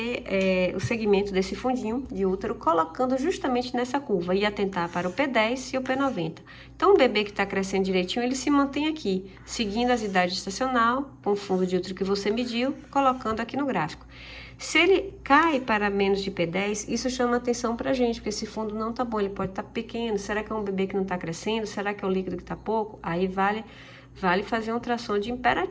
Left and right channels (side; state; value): both; identical; correlation 1.00